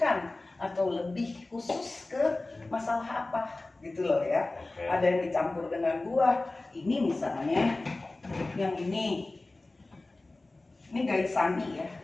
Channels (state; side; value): quieter; right; 3.1 dB